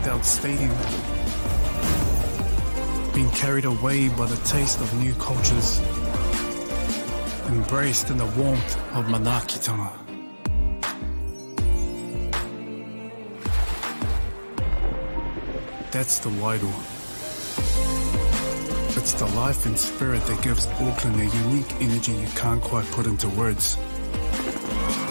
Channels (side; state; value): both; inverted; correlation -1.00